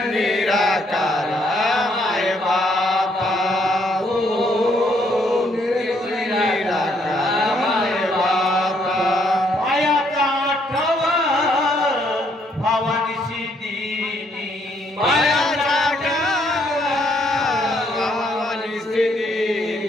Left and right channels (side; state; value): both; normal; correlation 0.70